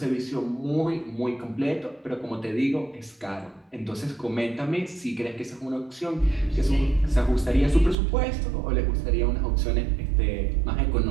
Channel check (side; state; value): left; drops out; at 8.0 s